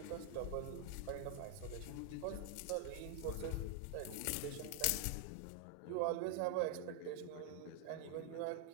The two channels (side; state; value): both; different; correlation 0.00